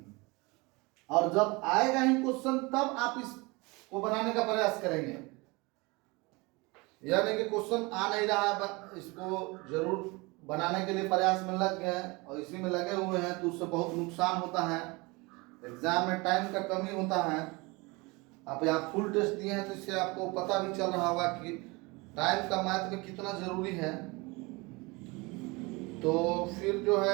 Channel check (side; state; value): left; quieter; 25.5 dB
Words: और जब आएगा ही क्वेश्चन तब आप इसको बनाने का प्रयास करेंगे, यह नहीं कि क्वेश्चन आ नहीं रहा है, इसको जरूर बनाने के लिए प्रयास में लग गए और इसी में लगे हुए हैं, तो उससे बहुत नुकसान होता है। एग्जाम में टाइम का कमी होता है। आप यहाँ फुल टेस्ट दिए हैं तो इससे आपको पता भी चल रहा होगा कि टाइम का मैथ में कितना जरूरी है। तो फिर जो